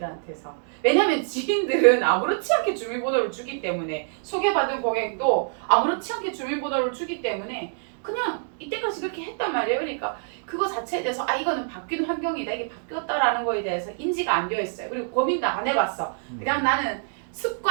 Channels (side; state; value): left; silent; digital silence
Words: 왜냐면 지인들은 아무렇지 않게 주민번호를 주기 때문에 소개받은 고객도 아무렇지 않게 주민번호를 주기 때문에 그냥 이때까지 그렇게 했단 말이에요. 그러니까 그거 자체에 대해서 이거는 바뀐 환경이다. 이게 바뀌었다라는 거에 대해서 인지가 안 되어 있어요. 그리고 고민도 안 해봤어. 그냥 나는